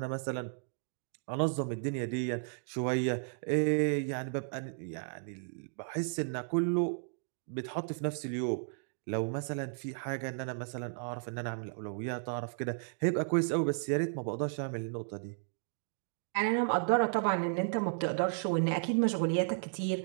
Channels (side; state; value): left; silent; digital silence